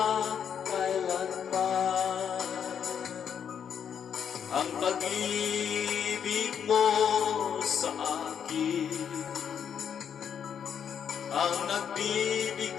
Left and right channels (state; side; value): quieter; right; 8.0 dB